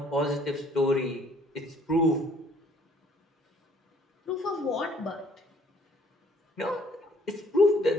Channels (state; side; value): normal; both; correlation 0.60